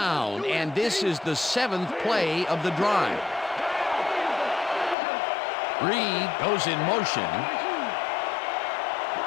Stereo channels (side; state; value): right; drops out; at 5.0 s